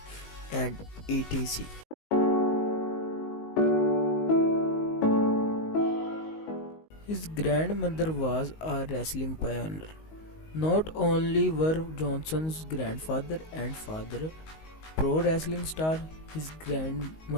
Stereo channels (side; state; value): right; late; 19 ms